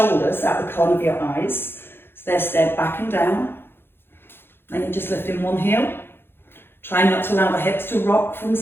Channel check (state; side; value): late; right; 0.11 ms